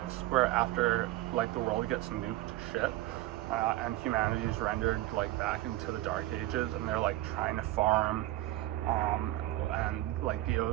where after like the world gets nuked to shit, and humanity is rendered like back into the dark ages, and they're like trying to farm, and like the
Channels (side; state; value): left; quieter; 16.6 dB